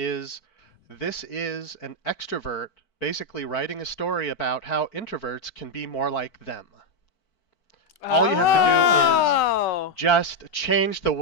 this is an extrovert basically writing a story about how introverts can be more like them. All you have to do is just change the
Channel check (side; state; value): right; late; 4.5 ms